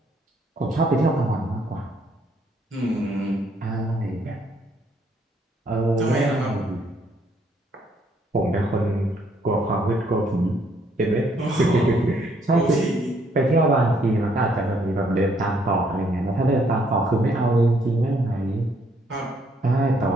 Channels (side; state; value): both; normal; correlation 0.69